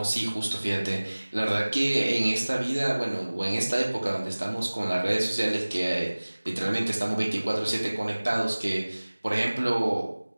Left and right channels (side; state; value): both; inverted; correlation -1.00